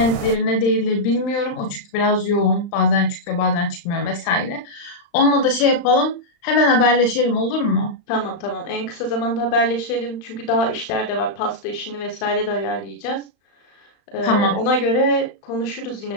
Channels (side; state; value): right; late; 35 ms